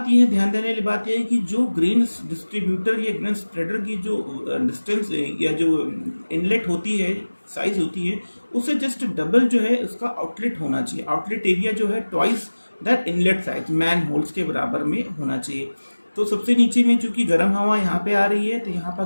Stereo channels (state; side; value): inverted; both; correlation -1.00